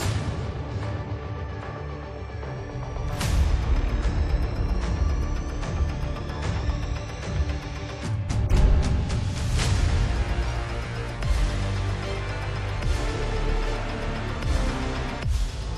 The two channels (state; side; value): identical; both; correlation 1.00